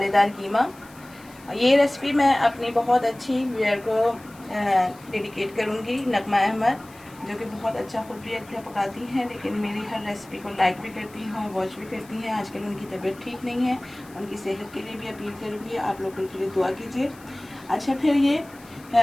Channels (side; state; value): left; noise; hiss, 24 dB below the sound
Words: कीमा। ये रेसिपी मैं अपनी बहुत अच्छी व्यूअर को डेडिकेट करूंगी, नगमा अहमद, जो कि बहुत अच्छा खुद भी अच्छा पकाती हैं, लेकिन मेरी हर रेसिपी को लाइक भी करती हैं, वॉच भी करती हैं। आजकल उनकी तबीयत ठीक नहीं है, उनकी सेहत के लिए भी अपील करूँगी, आप लोग उनके लिए दुआ कीजिए। अच्छा, फिर ये